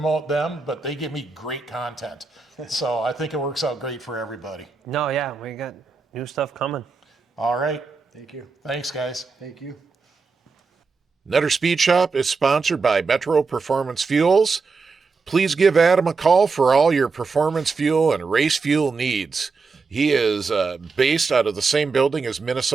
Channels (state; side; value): quieter; left; 4.5 dB